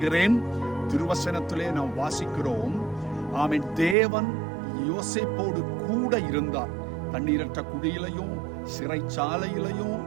திருவசனத்திலே நாம் வாசிக்கிறோம், ஆமென், தேவன் யோசேப்போடு கூட இருந்தார். தண்ணீரற்ற குடியிலையும் சிறைச்சாலையிலையும்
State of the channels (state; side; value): drops out; left; at 4.0 s